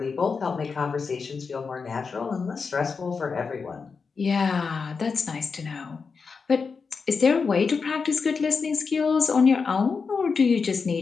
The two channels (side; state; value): right; quieter; 5.1 dB